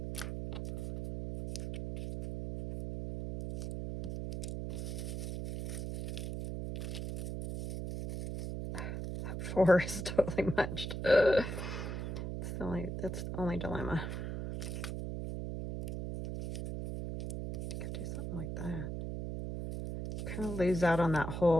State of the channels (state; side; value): noise; right; hum, 4 dB below the sound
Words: That 4 is totally munched. That's the only dilemma. Could do something like that. Kind of lose out on that